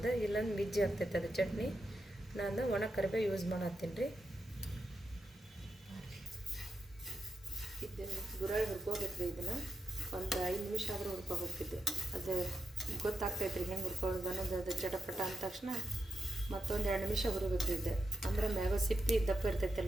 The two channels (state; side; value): normal; both; correlation 0.87